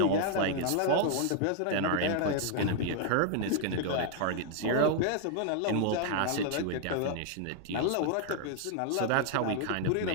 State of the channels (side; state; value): both; different; correlation 0.00